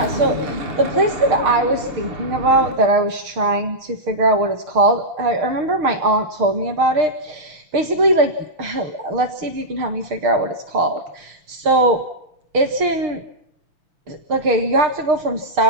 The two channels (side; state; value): left; late; 6.5 ms